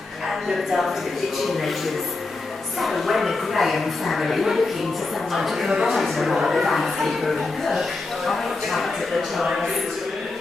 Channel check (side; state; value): right; quieter; 3.5 dB